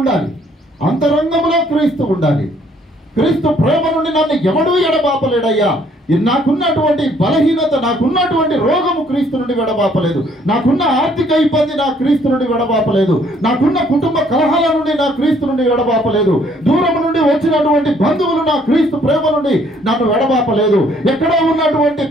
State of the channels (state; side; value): normal; both; correlation 0.64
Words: అంతరంగంలో క్రీస్తు ఉండాలి. క్రీస్తు ప్రేమ నుండి నన్ను ఎవడూ ఎడబాపలేడయ్యా. నాకున్నటువంటి బలహీనత, నాకున్నటువంటి రోగము క్రీస్తు నుండి విడబాపలేదు. నాకున్న ఆర్థిక ఇబ్బంది నా క్రీస్తు నుండి విడబాపలేదు. నాకున్న కుటుంబ కలహాల నుండి నా క్రీస్తు నుండి విడబాపలేదు. దూరం నుండి వచ్చినటువంటి బంధువులు నా క్రీస్తు ప్రేమ నుండి నన్ను విడబాపలేదు. ఎక్కడో ఉన్నటువంటి